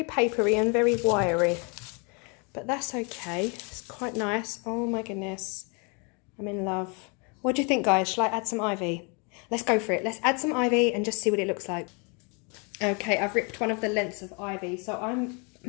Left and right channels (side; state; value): right; quieter; 33.5 dB